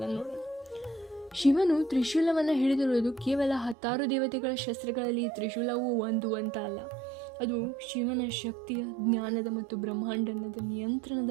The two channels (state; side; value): drops out; left; at 3.8 s